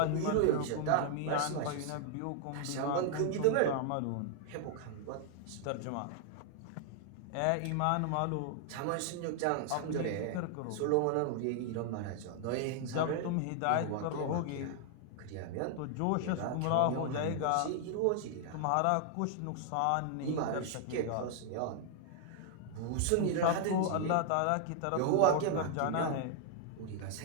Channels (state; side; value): different; both; correlation 0.00